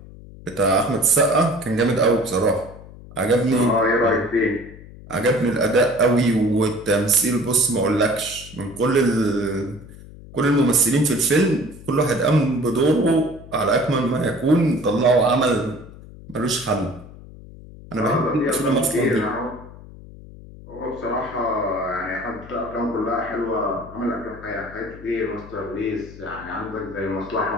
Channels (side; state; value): left; noise; hum, 18 dB below the sound